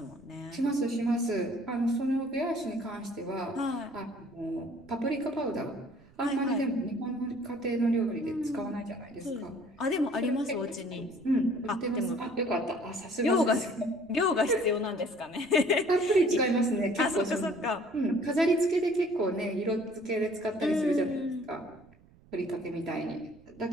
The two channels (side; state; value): right; noise; rumble, 27 dB below the sound